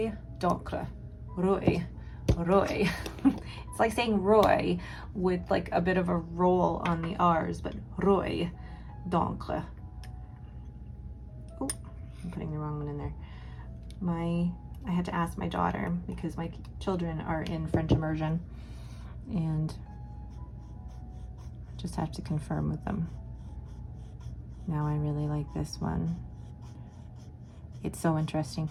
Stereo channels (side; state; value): both; identical; correlation 1.00